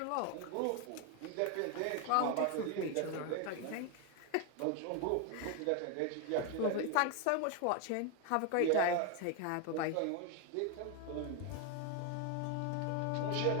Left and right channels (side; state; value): both; different; correlation 0.01